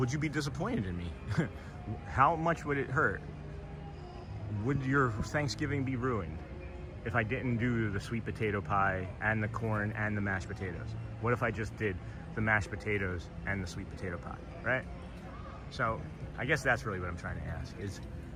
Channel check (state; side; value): identical; both; correlation 1.00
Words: you be disappointed in me? How much would it hurt? Would your Thanksgiving be ruined if I didn't do the sweet potato pie and the corn and the mashed potatoes? What if I just did the mashed potatoes and the sweet potato pie, right? So I guess that's really what I'm trying to ask is